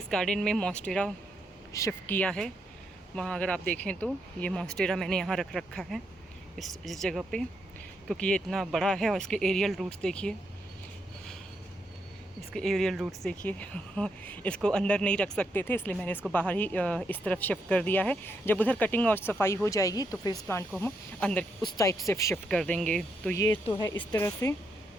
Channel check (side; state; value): both; normal; correlation 0.79